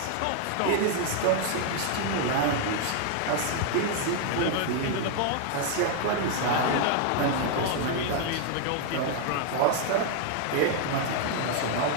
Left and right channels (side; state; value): both; different; correlation 0.00